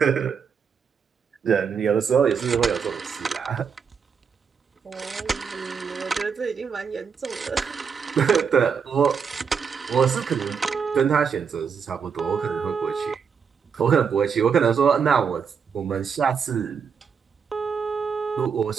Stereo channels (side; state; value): left; quieter; 6.4 dB